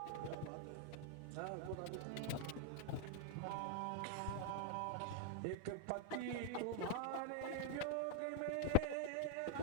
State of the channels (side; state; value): both; different; correlation 0.00